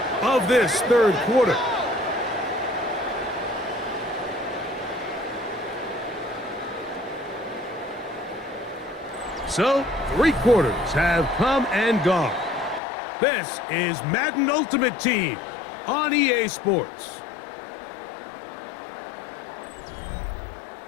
of this third quarter. So, 3 quarters have come and gone. This is Madden Ultimate Team on EA Sports.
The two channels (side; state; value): right; drops out; at 12.8 s